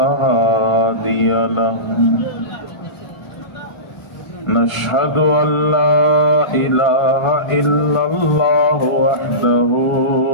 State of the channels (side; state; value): right; late; 1.5 ms